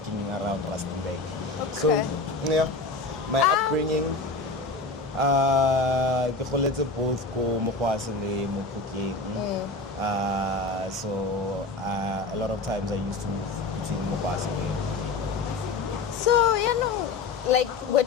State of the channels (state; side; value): quieter; right; 3.6 dB